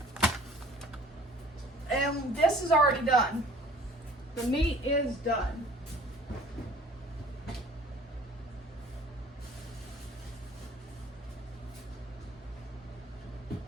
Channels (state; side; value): normal; both; correlation 0.51